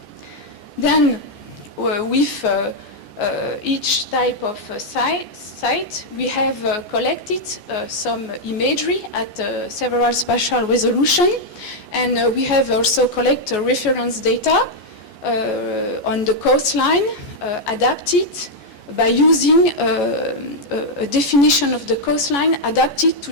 Then with each type of site, we have collected some imagery at several spatial resolution, and we have also collected reference data on the coastline adapted by using a definition of the coastline adapted to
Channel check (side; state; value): right; late; 14 ms